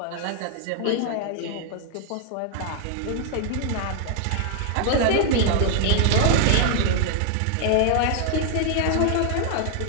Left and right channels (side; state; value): both; different; correlation 0.00